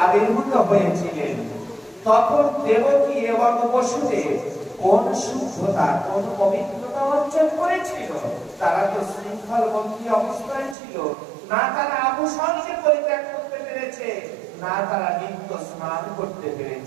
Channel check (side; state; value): left; drops out; at 10.8 s